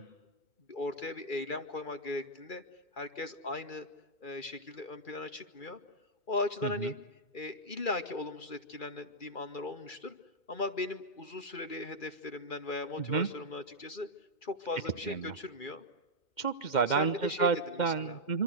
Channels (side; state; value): right; late; 2.4 ms